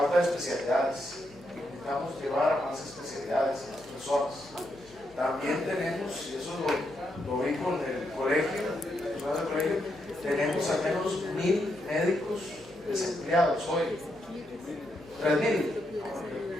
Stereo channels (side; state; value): left; noise; hum, 26 dB below the sound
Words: de especialidades. Necesitamos llevar a más especialidades a las personas. También tenemos, y eso lo vi con el colegio, tenemos al menos 1.000 médicos desempleados hoy. 3.000.